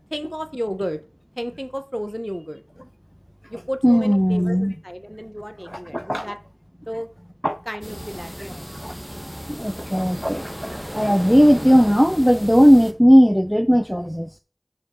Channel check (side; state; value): both; identical; correlation 1.00